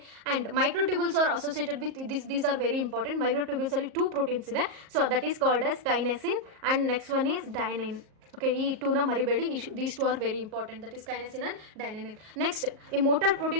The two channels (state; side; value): late; left; 38 ms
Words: microtubules are associated with these are very important. Microtubules ಅಲ್ಲಿ 2 ಪ್ರೋಟೀನ್ಸ್ ಇದೆ. So that is called as kinesin and next one is dynein. Okay, ಈ 2ನ ಮರಿಬೇಡಿ. These 2 are very important, that is kinesin and dynein. Next, a motor